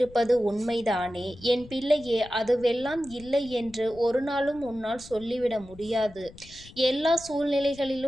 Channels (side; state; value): left; noise; rumble, 20 dB below the sound